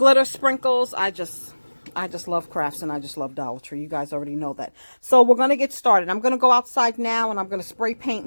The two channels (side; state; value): both; inverted; correlation -1.00